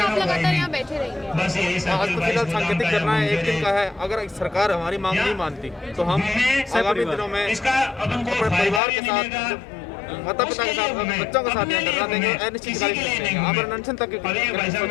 आप लगातार यहाँ बैठे रहेंगे? आज तो फिलहाल सांकेतिक करना है, 1 दिन का है। अगर सरकार हमारी मांग नहीं मानती तो हम आगामी दिनों में अपने परिवार के साथ, माता पिता के साथ, बच्चों के साथ धरना देंगे, अनिश्चितकालीन देंगे, आमरण अनशन तक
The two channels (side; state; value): right; drops out; at 8.8 s